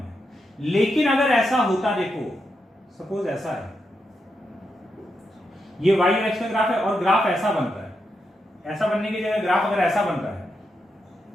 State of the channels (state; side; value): normal; both; correlation 0.84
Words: लेकिन अगर ऐसा होता, देखो सपोज ऐसा है, ये y और x का ग्राफ है और ग्राफ ऐसा बन रहा है, ऐसा बनने की जगह ग्राफ अगर ऐसा बन रहा है,